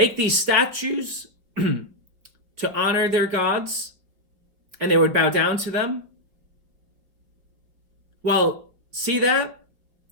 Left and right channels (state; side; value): late; left; 4.6 ms